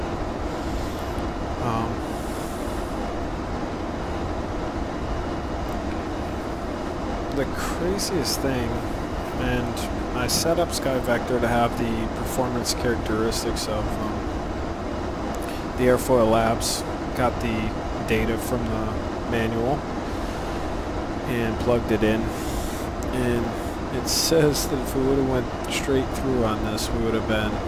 The craziest thing, and I set up Sky Vector to have the performance characteristics of the Airfoillabs, got the data from the manual and plugged it in, and it says that if we would have went straight through on this, we would have been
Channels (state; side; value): identical; both; correlation 1.00